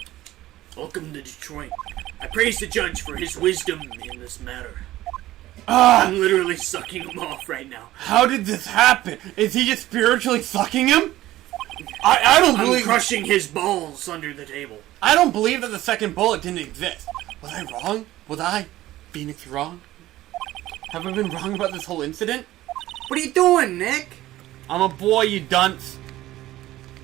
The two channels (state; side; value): quieter; left; 15.5 dB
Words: Welcome to Detroit. I praise the judge for his wisdom in this matter. I'm literally sucking him off right now. How did this happen? Is he just spiritually sucking him? I don't I'm believe. crushing his balls under the table. I don't believe that the second bullet didn't exist. Was I wrong? Was I, Phoenix, wrong? Have I been wrong about this whole incident? What are you doing, Nick? I'm a boy, you dunce.